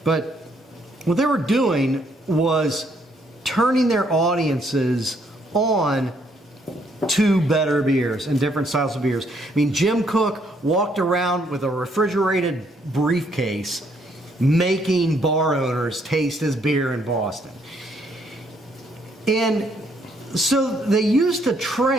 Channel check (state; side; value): normal; both; correlation 0.70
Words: but what they were doing was turning their audiences on to better beers and different styles of beers. Jim Koch walked around with a refrigerated briefcase making bar owners taste his beer in Boston. And so they used to